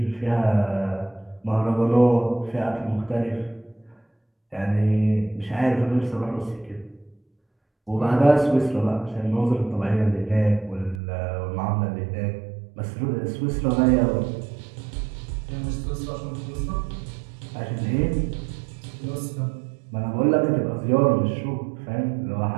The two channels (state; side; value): drops out; left; at 11.0 s